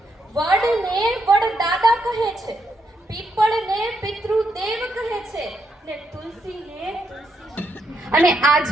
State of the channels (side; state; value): both; normal; correlation 0.80